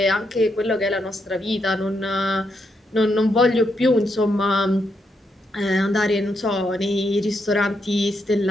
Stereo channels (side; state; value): both; normal; correlation 0.80